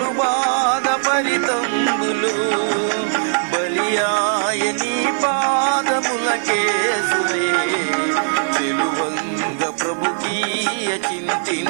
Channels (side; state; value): left; silent; 62 dB below the other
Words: బాధ పరితంబులు. బలియాయ నీ పాదములకేసులే, చెలువంగ ప్రభుకీయ